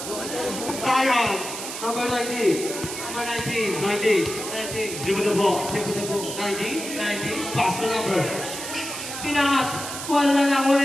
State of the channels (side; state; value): right; noise; hiss, 7 dB below the sound